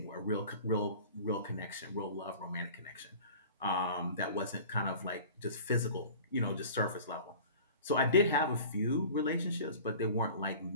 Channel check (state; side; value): inverted; both; correlation -0.42